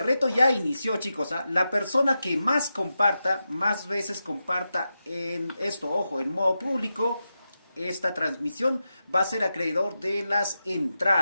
reto ya inició, chicos. La persona que más comparta, más veces comparta en esto, ojo, en modo público, esta transmisión va a ser acreedor de las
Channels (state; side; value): inverted; both; correlation -0.90